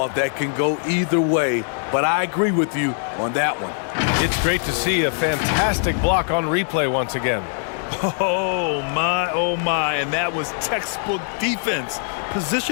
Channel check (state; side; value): silent; right; 64 dB below the other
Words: that can go either way, but I agree with you on that one. It's great to see a fantastic block on replay once again. Oh my, and that was textbook defense,